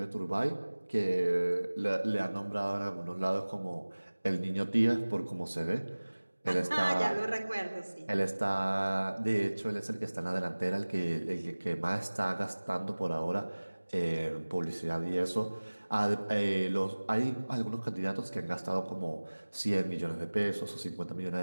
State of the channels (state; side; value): inverted; both; correlation -1.00